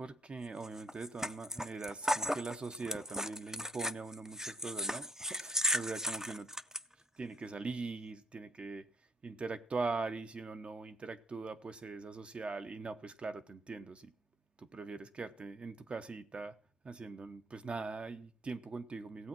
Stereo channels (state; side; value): normal; both; correlation 0.70